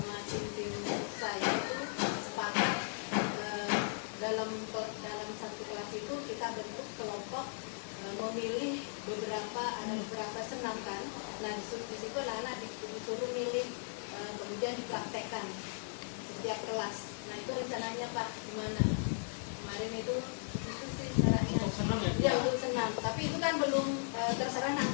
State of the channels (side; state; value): right; silent; 53 dB below the other